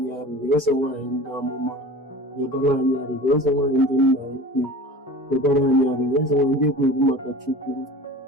arịrịọ eze nwaanyị ndị amụma, rịọbara anyị arịrịọ eze nwaanyị ndị nna ukwu, rịọbara anyị arịrịọ eze nwaanyị ndị ebu ebu maka Chukwu,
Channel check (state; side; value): normal; both; correlation 0.38